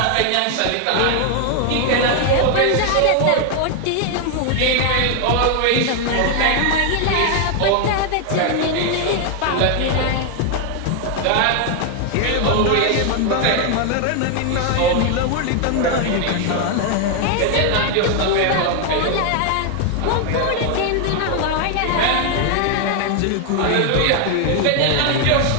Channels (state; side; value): different; both; correlation 0.00